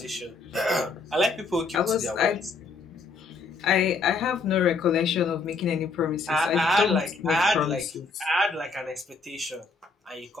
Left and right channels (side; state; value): right; quieter; 4.1 dB